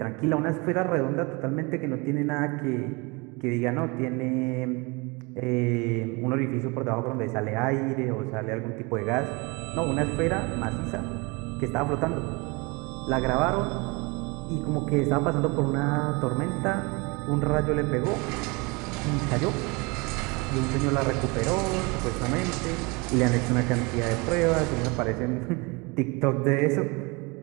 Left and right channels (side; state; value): left; quieter; 27.6 dB